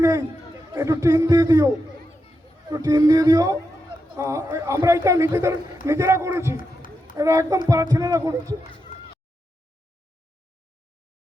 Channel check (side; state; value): both; normal; correlation 0.87